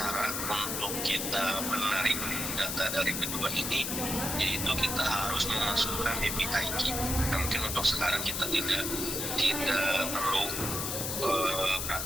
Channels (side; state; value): left; noise; hiss, 2 dB below the sound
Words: untuk kita menarik data dari kedua ini, yaitu kita harus memasukkan API key. Nah, mungkin untuk sekarang kita tidak perlu